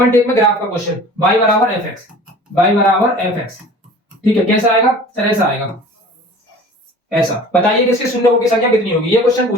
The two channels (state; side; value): normal; both; correlation 0.44